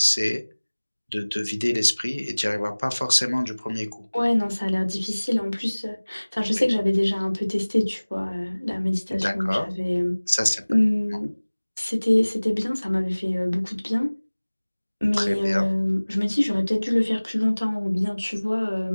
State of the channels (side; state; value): both; inverted; correlation -1.00